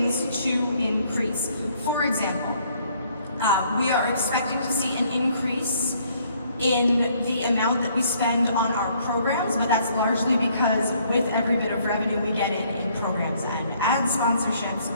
to increase. For example, we are expecting to see an increase in the amount that we spend on our programs, but that's largely because with every bit of revenue we get in programs and ad sponsorships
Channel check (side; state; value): both; inverted; correlation -0.64